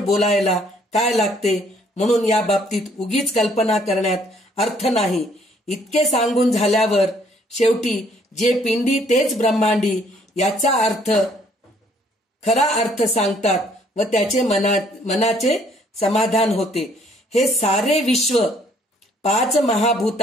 बोलायला काय लागते. म्हणून या बाबतीत उगीच कल्पना करण्यात अर्थ नाही. इतके सांगून झाल्यावर शेवटी जे पिंडी तेच ब्रह्मांडी याचा खरा अर्थ सांगतात व त्याचे मनाचे समाधान होते. हे सारे विश्व 5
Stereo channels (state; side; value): normal; both; correlation 0.63